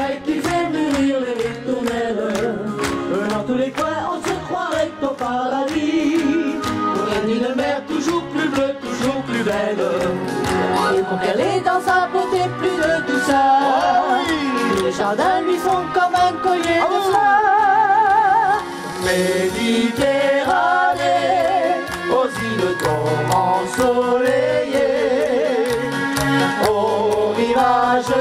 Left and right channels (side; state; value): both; identical; correlation 1.00